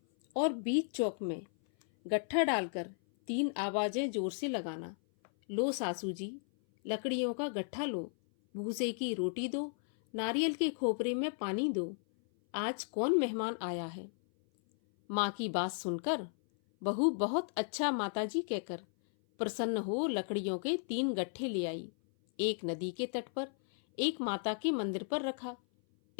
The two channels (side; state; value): right; silent; 55 dB below the other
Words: और बीच चौक में गट्ठा डालकर 3 आवाजें जोर से लगाना, लो सासू जी, लकड़ियों का गट्ठा लो, भूसे की रोटी दो, नारियल के खोपरे में पानी दो, आज कौन मेहमान आया है? माँ की बात सुनकर बहू बहुत अच्छा माताजी कहकर प्रसन्न हो लकड़ियों के 3 गट्ठे ले आई। एक नदी के तट पर, एक माता के मंदिर पर रखा।